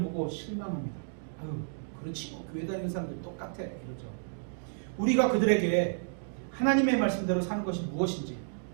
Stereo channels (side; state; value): left; silent; digital silence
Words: 보고 실망합니다. 아유, 그렇지 뭐 교회 다니는 사람들 똑같아 이러죠. 우리가 그들에게 하나님의 말씀대로 사는 것이 무엇인지,